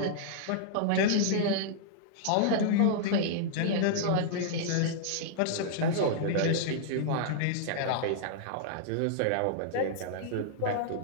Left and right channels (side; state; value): both; different; correlation -0.02